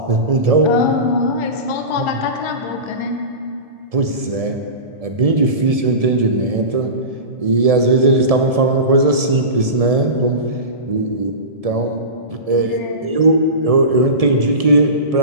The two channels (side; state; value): left; late; 1.7 ms